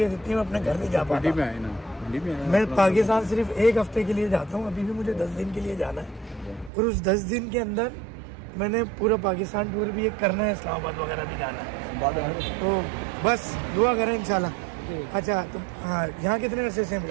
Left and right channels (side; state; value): left; drops out; at 6.7 s